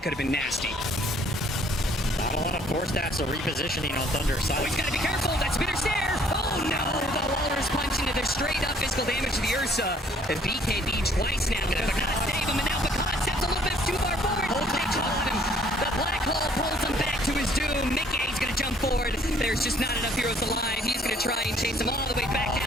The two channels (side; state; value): both; normal; correlation 0.61